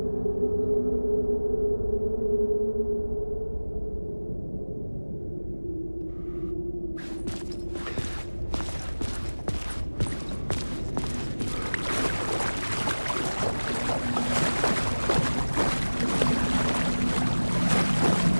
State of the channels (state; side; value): inverted; both; correlation -1.00